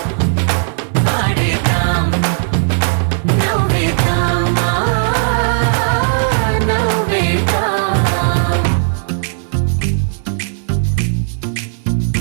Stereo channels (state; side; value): silent; left; 69 dB below the other